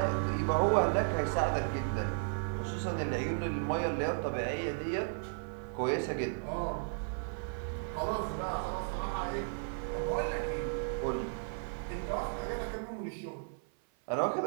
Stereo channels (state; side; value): silent; left; 55 dB below the other